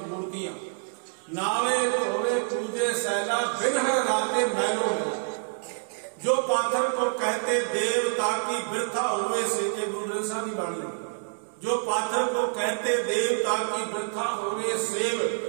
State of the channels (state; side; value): silent; left; 60 dB below the other